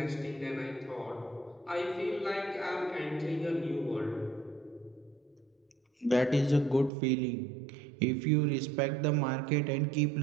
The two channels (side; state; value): left; drops out; at 6.9 s